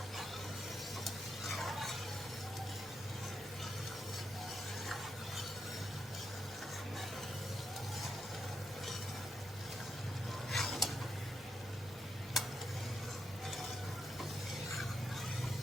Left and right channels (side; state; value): both; normal; correlation 0.82